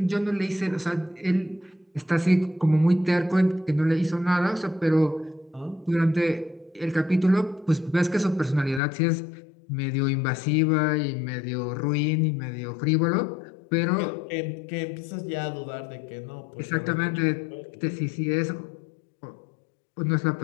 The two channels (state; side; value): drops out; right; at 8.8 s